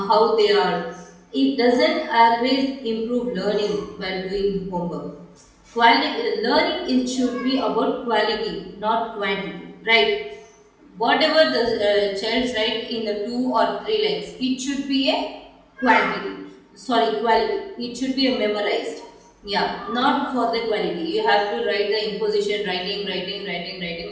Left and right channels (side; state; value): both; identical; correlation 1.00